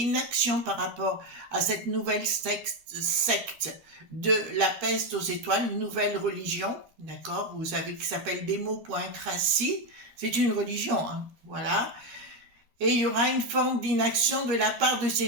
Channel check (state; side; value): late; left; 13 ms